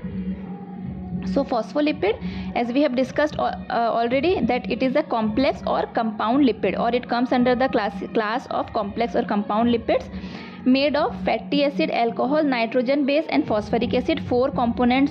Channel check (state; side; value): identical; both; correlation 1.00